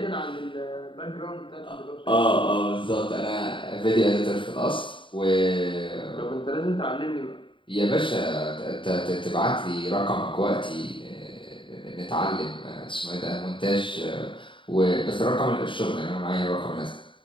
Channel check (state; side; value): late; right; 0.24 ms